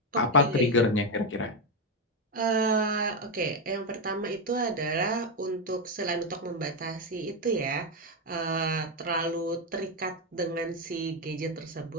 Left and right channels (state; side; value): normal; both; correlation 0.07